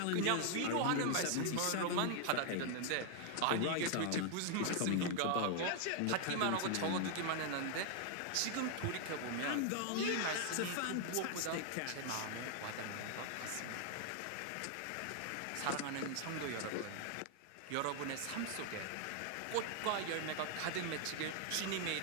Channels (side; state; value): both; different; correlation 0.00